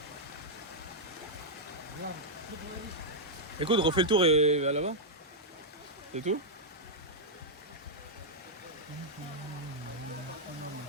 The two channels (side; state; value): both; normal; correlation -0.05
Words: Écoute, refais le tour et va là-bas. C'est tout?